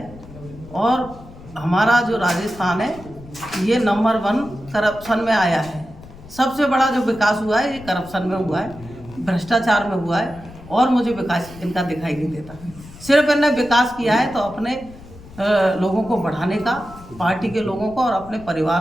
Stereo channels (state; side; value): noise; left; rumble, 18 dB below the sound